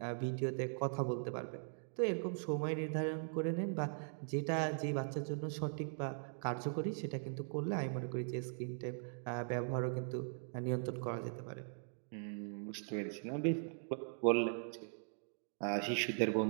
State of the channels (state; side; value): silent; left; digital silence